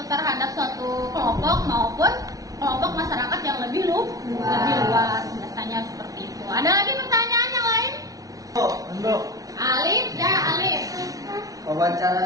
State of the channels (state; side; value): late; left; 0.17 ms